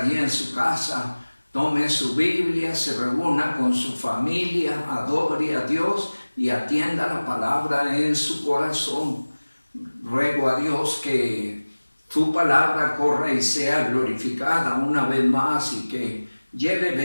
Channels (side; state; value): both; inverted; correlation -1.00